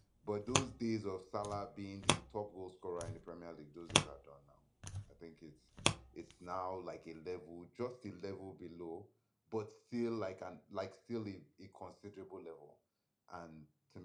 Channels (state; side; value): identical; both; correlation 1.00